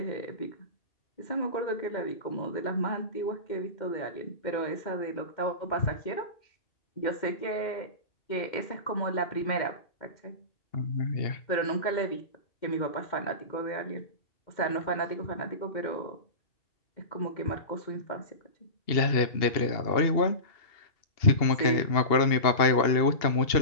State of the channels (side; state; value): right; late; 2.8 ms